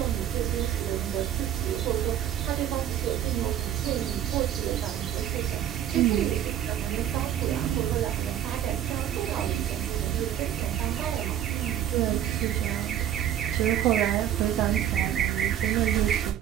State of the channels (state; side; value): quieter; left; 10.7 dB